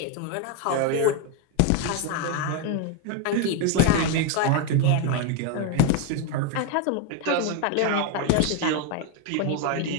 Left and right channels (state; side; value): different; both; correlation 0.02